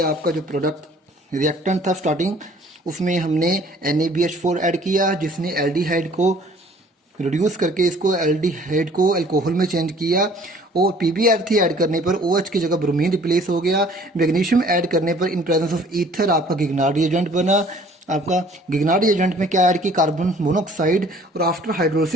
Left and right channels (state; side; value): normal; both; correlation 0.55